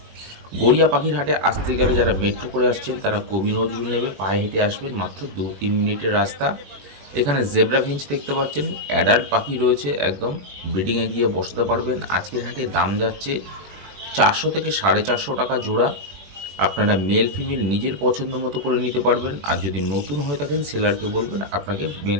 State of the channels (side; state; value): left; late; 21 ms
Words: গড়িয়া পাখির হাটে আসতে গেলে যারা মেট্রো করে আসছেন তারা কবি নজরুল নেবে, পায়ে হেঁটে আসবেন, মাত্র 2-3 মিনিটের রাস্তা। এখানে জেব্রা ফিঞ্চ দেখতে পাচ্ছেন, অ্যাডাল্ট পাখি রয়েছে, একদম ব্রিডিংয়ে গিয়ে বসাতে পারবেন। আজকের হাটে দাম যাচ্ছে 400 থেকে 450 টাকা জোড়া। আপনারা মেল ফিমেল নিজের পছন্দ মতো করে নিতে পারবেন। আর যদি নতুন হয়ে থাকেন সেলারকে বলবেন আপনাকে মেল